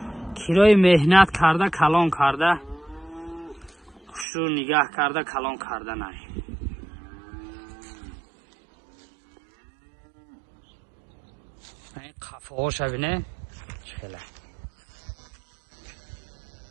کرای مهنت کرده کلان کرده خوش رو نگاه کرده کلان کرده نه این قفه ها شبینه چخیله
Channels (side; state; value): left; drops out; at 4.2 s